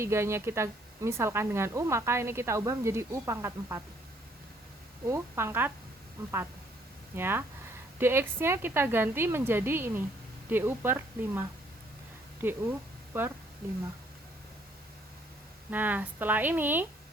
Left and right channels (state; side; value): normal; both; correlation 0.64